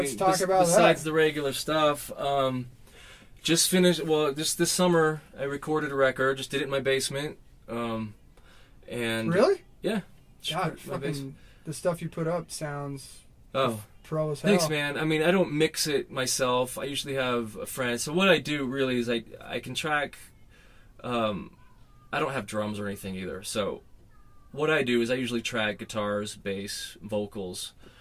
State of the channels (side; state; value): both; identical; correlation 1.00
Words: I mean, talk about besides that. the regular stuff, just finished. Well, just this summer, I recorded a record. Just did it in my basement. And Really? Yeah. God, my basement. fucking, the stuff you put up sounds Oh, pro as hell. thanks, man. I mean, I don't mix it myself. I usually have a friend. So what I do really is I can track. I don't have drums or anything either. So what I do is I usually track guitars, bass, vocals,